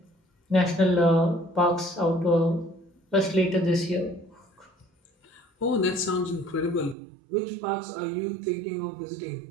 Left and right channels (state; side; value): drops out; left; at 7.0 s